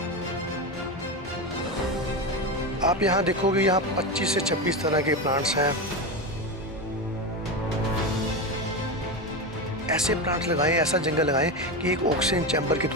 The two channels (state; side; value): normal; both; correlation 0.17